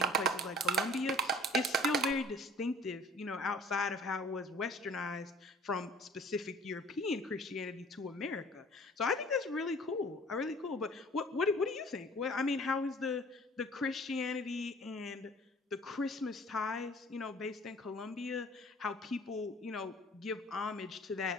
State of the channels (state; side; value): normal; both; correlation 0.51